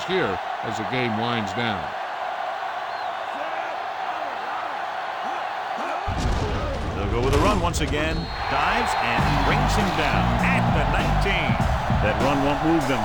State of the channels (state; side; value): identical; both; correlation 1.00